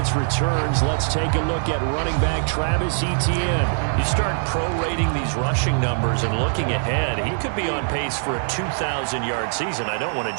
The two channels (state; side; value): silent; left; 64 dB below the other